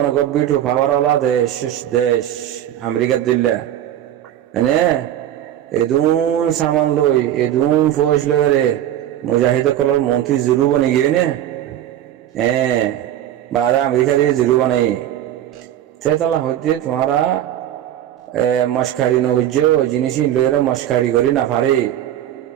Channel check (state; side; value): quieter; left; 11.7 dB